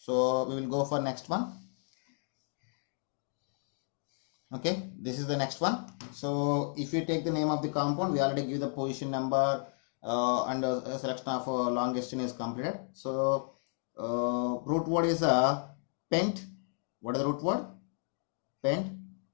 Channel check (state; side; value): silent; right; 56 dB below the other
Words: we will go for next one. Okay, this is the next one. So if you take the name of the compound, we already give the position number and a selection of longest chain is completed. So root word is pent. What is the root word? Pent.